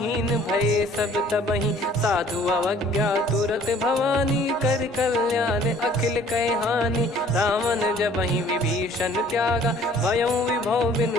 भय सब तबहि। साधु अवज्ञा तुरत भवानी कर कल्याण अखिल कह हानि। रावण जबहि विभीषण त्यागा भयउ विभव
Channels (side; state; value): both; normal; correlation 0.55